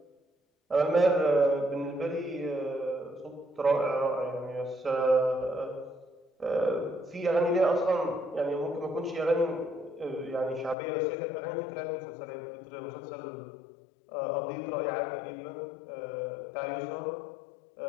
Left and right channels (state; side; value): drops out; right; at 10.8 s